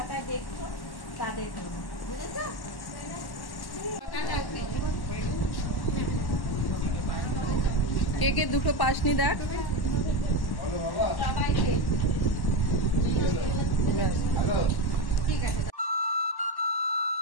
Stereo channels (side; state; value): right; late; 1.1 ms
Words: দেখছো, তাদের জন্য। বুঝেছো? কে কে দুটো পাসনি দেখ। সবাই পেয়েছে।